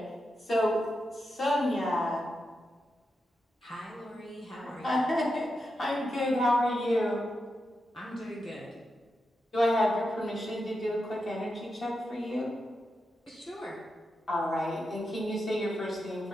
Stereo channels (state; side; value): normal; both; correlation 0.87